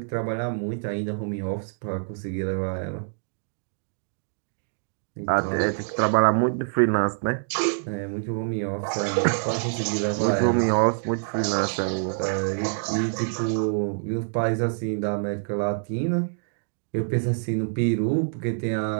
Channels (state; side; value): silent; left; digital silence